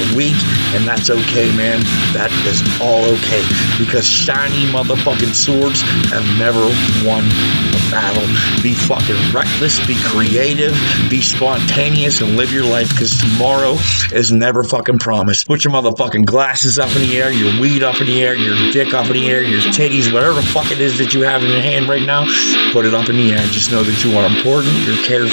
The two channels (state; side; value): inverted; both; correlation -1.00